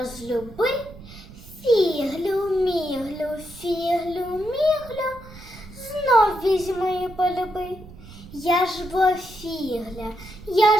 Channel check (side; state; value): right; noise; rumble, 17 dB below the sound